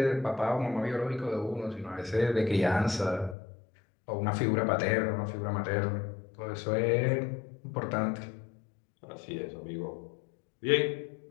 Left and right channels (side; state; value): right; drops out; at 3.4 s